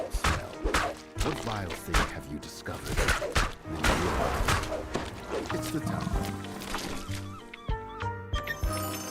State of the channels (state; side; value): identical; both; correlation 1.00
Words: smell. What vile thing have you discovered? And then you realize it's the town.